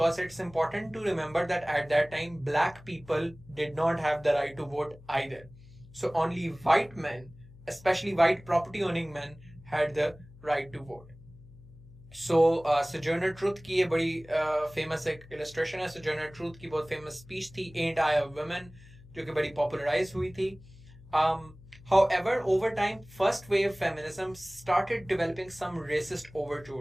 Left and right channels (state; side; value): noise; left; hum, 21 dB below the sound